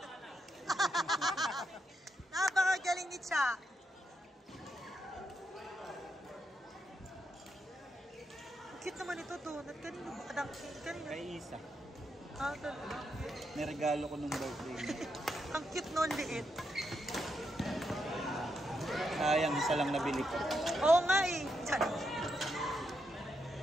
Napakagaling ni Cha. Cute naman ito, donut. Kanino ba? Kanino? Kay Isa. Ah, talaga. Niregalo ko nung birthday. Ang cute nun, liit. Sayang, isa lang nabili ko. Oo nga eh. Tiyan.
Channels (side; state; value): both; normal; correlation 0.82